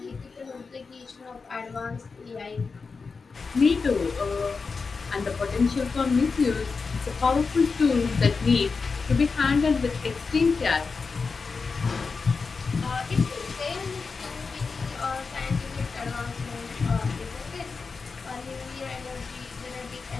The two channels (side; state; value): right; quieter; 4.7 dB